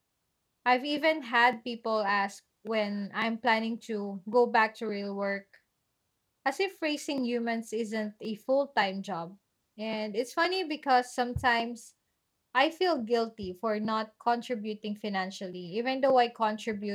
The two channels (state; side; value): identical; both; correlation 1.00